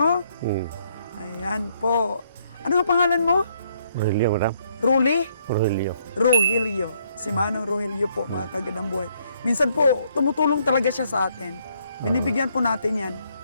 Ayan po. Ano ang pangalan mo? Rogelio, madam. Ruli? Rogelio. Rogelio. Si Manong Rogelio po, mga kagandang buhay. Minsan po, tumutulong talaga siya sa atin. Binibigyan po natin yan.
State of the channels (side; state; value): both; inverted; correlation -0.70